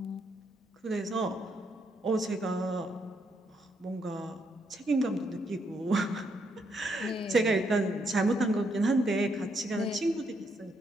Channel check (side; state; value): both; normal; correlation 0.76